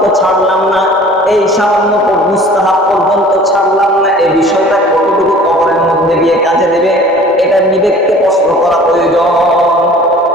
ছাড়লাম না। এই সামান্য মুস্তাহাব পর্যন্ত ছাড়লাম না, এই বিষয়টা কতটুকু কবরের মধ্যে গিয়ে কাজে দেবে, এটা বিবেককে প্রশ্ন করা প্রয়োজন।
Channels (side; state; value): both; normal; correlation 0.47